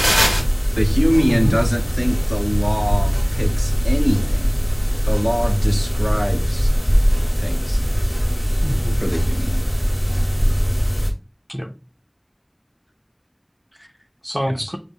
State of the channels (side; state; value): both; identical; correlation 1.00